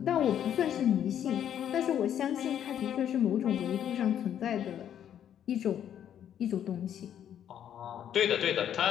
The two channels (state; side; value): quieter; right; 9.8 dB